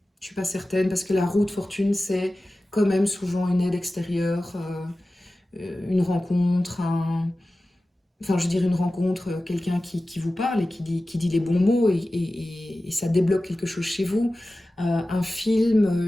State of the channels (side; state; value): both; normal; correlation 0.96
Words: Je suis pas certaine, parce que la roue de fortune, c'est quand même souvent une aide extérieure, une rencontre, enfin je veux dire une rencontre, quelqu'un qui vous parle et qui dit les bons mots et ça débloque quelque chose chez vous. Un